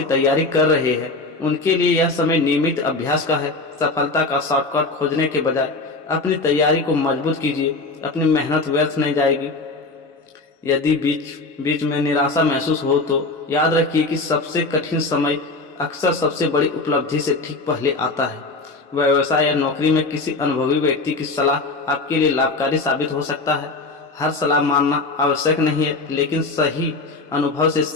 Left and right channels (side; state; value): right; quieter; 3.4 dB